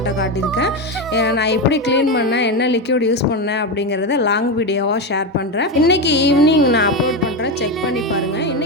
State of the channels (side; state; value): both; normal; correlation 0.14